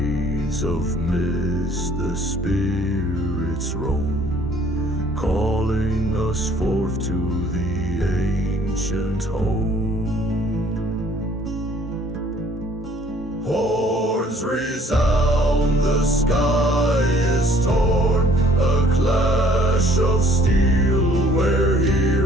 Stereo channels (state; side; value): normal; both; correlation 0.58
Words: of mist the spirits roam, calling us forth to the ancient home. Horns resound, the sky is torn, a clash of steel where